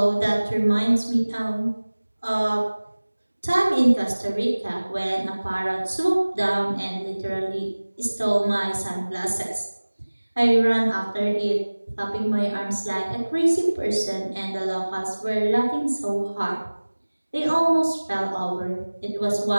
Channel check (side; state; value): both; inverted; correlation -1.00